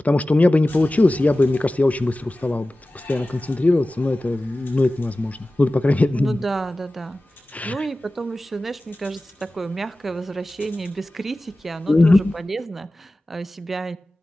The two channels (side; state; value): both; normal; correlation 0.96